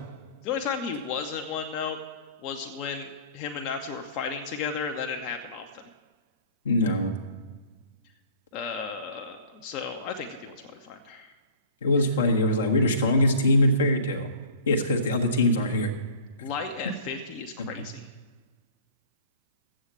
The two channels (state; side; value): inverted; both; correlation -0.46